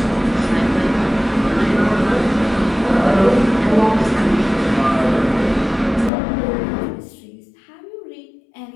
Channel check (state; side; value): drops out; right; at 6.1 s